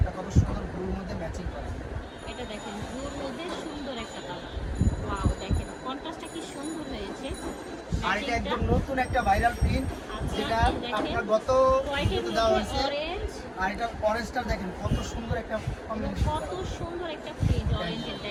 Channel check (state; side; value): identical; both; correlation 1.00